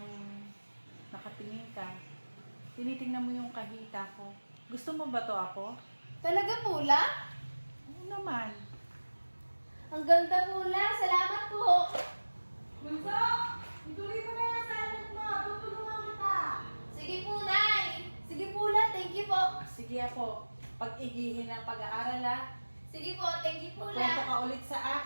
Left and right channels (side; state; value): both; inverted; correlation -1.00